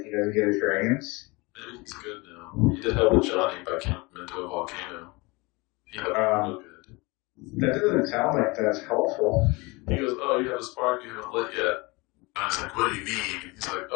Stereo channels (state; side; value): quieter; right; 25.4 dB